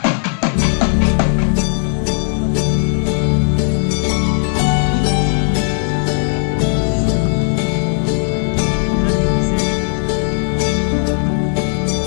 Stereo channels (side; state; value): right; silent; digital silence